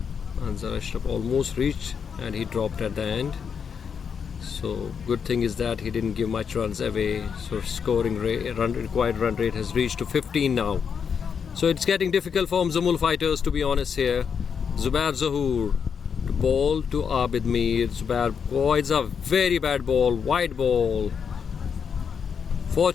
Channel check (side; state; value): right; quieter; 6.7 dB